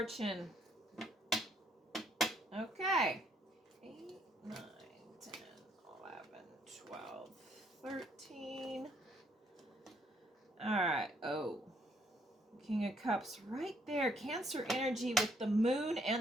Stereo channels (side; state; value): both; normal; correlation 0.68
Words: Okay. 8, 9, 10, 11, 12, 13. All right. Oh. King of Cups right there. Cancer energy with the Moon